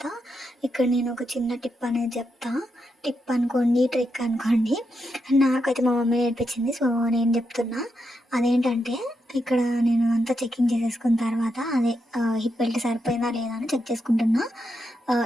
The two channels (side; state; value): both; normal; correlation 0.84